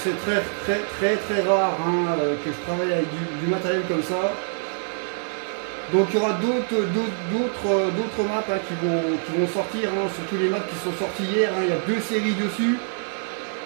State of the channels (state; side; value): silent; left; digital silence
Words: très rare hein, que je travaille avec du matériel comme ça. Donc il y aura d'autres maps hein, qui vont sortir, hein, surtout les maps qui sont sorties hier. Hein, il y a 2 séries dessus.